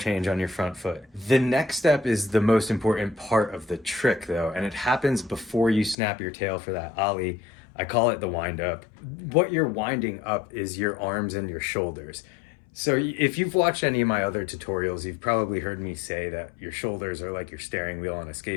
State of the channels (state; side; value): drops out; right; at 6.0 s